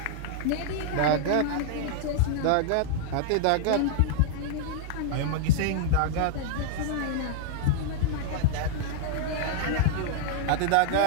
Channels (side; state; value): both; different; correlation -0.01